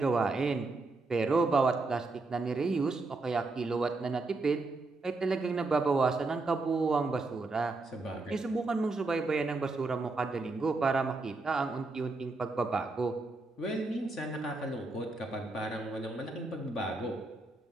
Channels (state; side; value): quieter; left; 3.4 dB